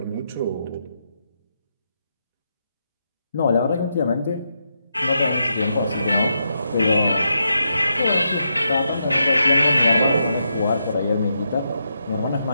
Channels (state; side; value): inverted; both; correlation -0.83